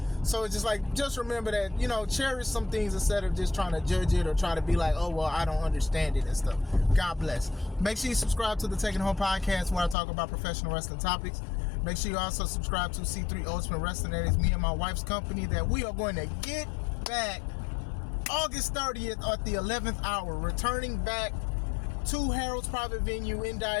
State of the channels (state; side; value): drops out; right; at 10.0 s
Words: So it's just like, just remember that, you know, cherish some things instead of just trying to judge it or try to be like, oh, well, I don't understand it and stuff. God bless. Make sure you subscribe to the Taking Home podcast where I talk about professional wrestling topics. Make sure you also subscribe to C3 Ultimate Wrestling. That is me and my wife's company that we are going to get back August 30th at the 11th hour, returning back to Harold's Private Venue in